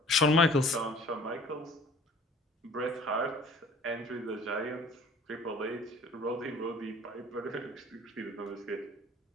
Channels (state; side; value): normal; both; correlation 0.50